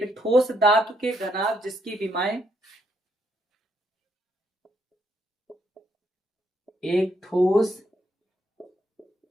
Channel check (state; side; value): normal; both; correlation 0.74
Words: ठोस धातु के घनाभ जिसकी विमाएं एक ठोस